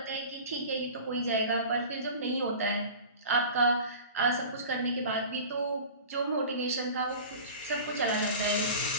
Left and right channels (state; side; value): inverted; both; correlation -0.37